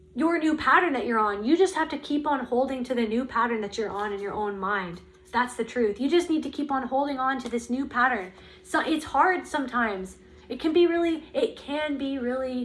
your new pattern that you're on. You just have to keep on holding to the new pattern that you're on in your own mind. That's the truth. You just need to keep on holding on to this new pattern. So it's hard sometimes. It can be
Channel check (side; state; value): both; identical; correlation 1.00